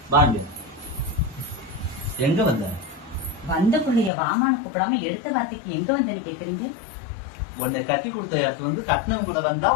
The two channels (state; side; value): drops out; right; at 4.1 s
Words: வாங்க. எங்க வந்த? வந்த பிள்ளைய வாமான்னு கூப்பிடாம எடுத்த வார்த்தைக்கு எங்க வந்தேன்னு கேக்குறீங்க? உன்னை கட்டி கொடுத்த இடத்துல வந்து கட்டினவங்க கூட வந்தா